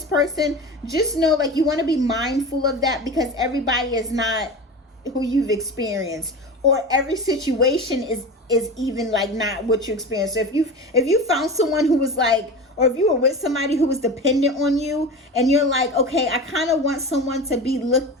person, just know like you want to be mindful of that, because everybody is not who you've experienced, or every situation is even like not what you experience. So if you found someone who was like, or if you were with somebody who was dependent on you, and you're like, okay, I kind of want someone to be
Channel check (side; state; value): both; normal; correlation 0.29